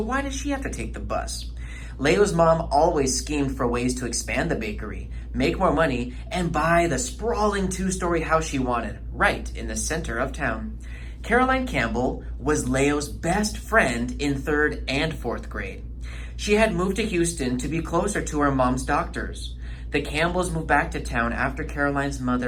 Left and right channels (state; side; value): identical; both; correlation 1.00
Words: does she have to take the bus? Leo's mom always schemed for ways to expand the bakery, make more money, and buy the sprawling 2-story house she wanted, right in the center of town. Caroline Campbell was Leo's best friend in 3rd and 4th grade. She had moved to Houston to be closer to her mom's doctors. The Campbells moved back to town after Caroline's